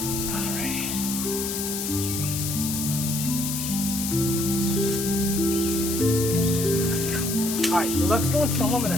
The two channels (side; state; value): left; noise; hiss, 3 dB below the sound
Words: Alright, let's go and film them in a